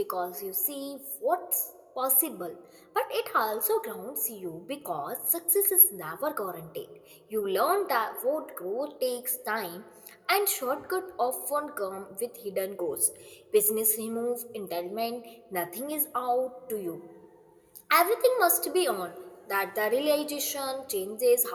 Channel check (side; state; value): both; identical; correlation 1.00